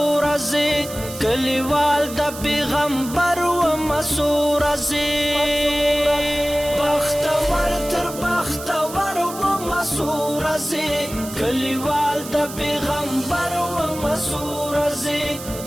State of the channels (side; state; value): right; noise; hiss, 12 dB below the sound